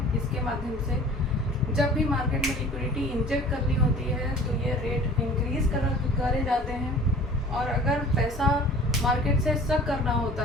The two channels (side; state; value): both; normal; correlation 0.46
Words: इसके माध्यम से जब भी मार्केट में लिक्विडिटी इंजेक्ट करनी होती है तो ये रेट इंक्रीज़ करे जाते हैं। और अगर पैसा मार्केट से सक करना होता